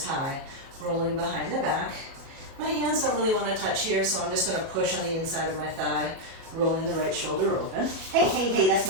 high, rolling behind the back. My hands don't really want to touch here, so I'm just going to push on the inside of my thigh, rolling the right shoulder open. Hey, hey, hey, that's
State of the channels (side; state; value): left; late; 37 ms